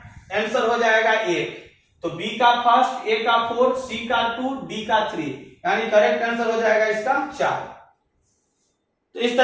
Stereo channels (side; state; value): both; identical; correlation 1.00